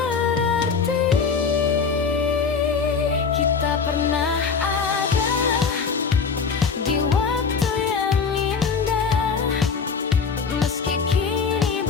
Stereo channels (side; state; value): right; quieter; 5.5 dB